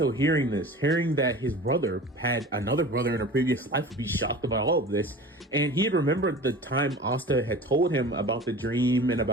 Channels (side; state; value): both; normal; correlation 0.38